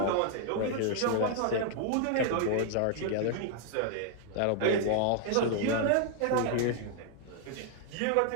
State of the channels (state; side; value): different; both; correlation -0.01